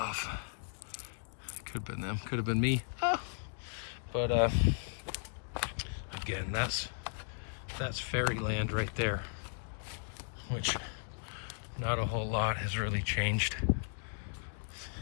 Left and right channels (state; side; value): silent; right; digital silence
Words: Could have been them, could have been me. Ah. But again, that's fairyland right there, which not a whole lot has really changed,